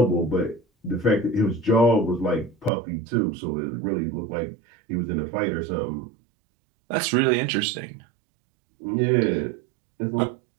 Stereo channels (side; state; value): left; drops out; at 2.7 s